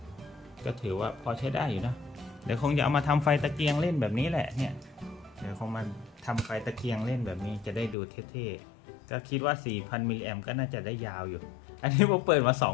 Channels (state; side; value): drops out; right; at 8.0 s